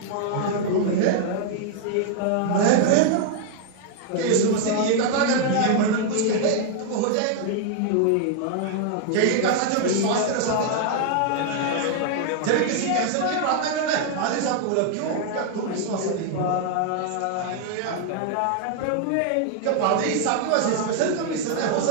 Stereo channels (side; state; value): both; different; correlation 0.00